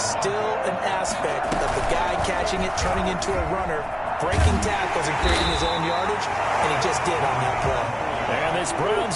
an aspect of the guy catching it, turning into a runner, breaking tackles and creating his own yardage, and he just did on that play. And this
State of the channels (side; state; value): both; identical; correlation 1.00